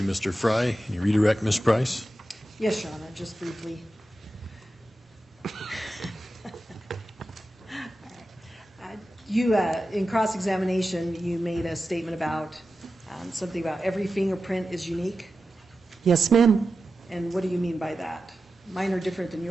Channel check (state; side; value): normal; both; correlation 0.92